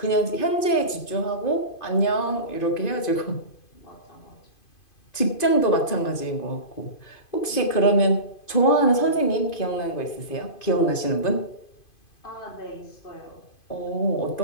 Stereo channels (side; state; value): right; late; 2.5 ms